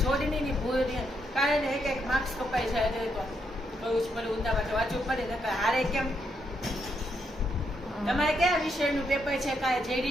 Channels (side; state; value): both; normal; correlation 0.78